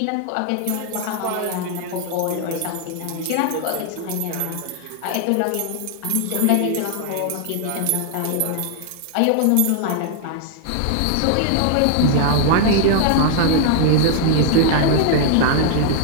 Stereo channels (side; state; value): both; different; correlation 0.00